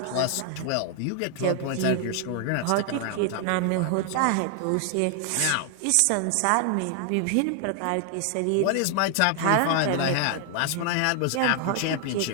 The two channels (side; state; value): both; different; correlation 0.00